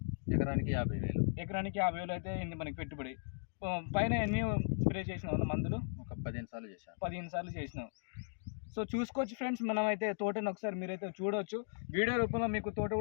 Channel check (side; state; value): right; silent; digital silence